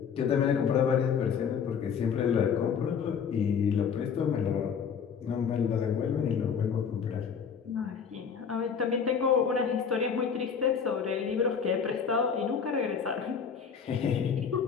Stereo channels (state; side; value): quieter; right; 6.8 dB